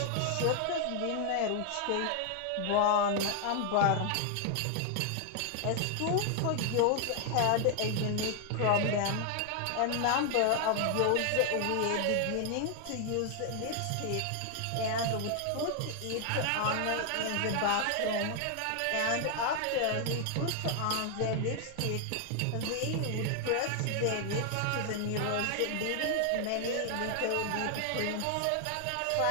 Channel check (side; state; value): both; different; correlation 0.00